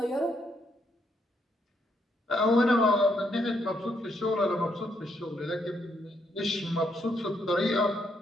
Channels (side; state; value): both; normal; correlation 0.75